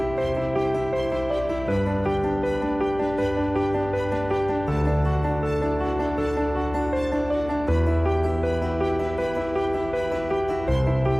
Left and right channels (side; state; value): left; noise; hum, 14 dB below the sound